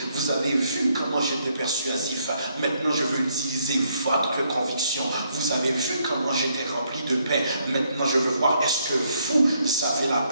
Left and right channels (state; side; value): inverted; both; correlation -0.72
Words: Vous avez vu comment j'étais persuasif. Maintenant, je veux utiliser votre conviction. Vous avez vu comment j'étais rempli de paix. Maintenant, je veux voir, est-ce que vous avez la